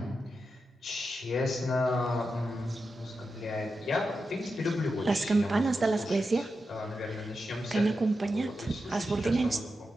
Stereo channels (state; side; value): normal; both; correlation 0.89